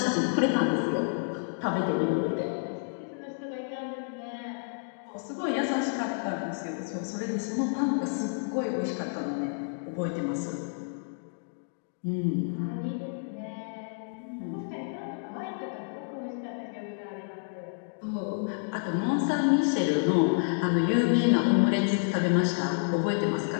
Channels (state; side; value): silent; right; digital silence